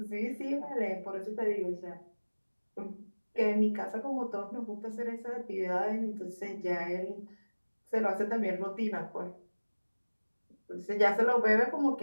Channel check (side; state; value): both; inverted; correlation -1.00